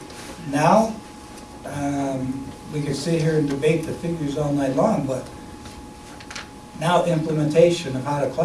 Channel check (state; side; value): identical; both; correlation 1.00